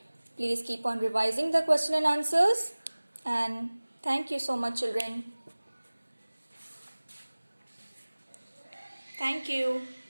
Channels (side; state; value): both; inverted; correlation -1.00